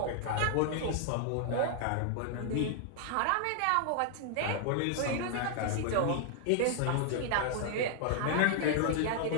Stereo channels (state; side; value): different; both; correlation 0.00